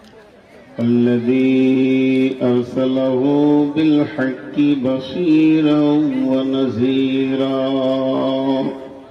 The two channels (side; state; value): both; identical; correlation 1.00